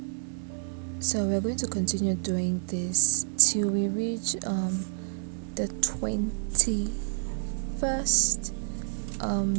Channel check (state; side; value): silent; left; 59 dB below the other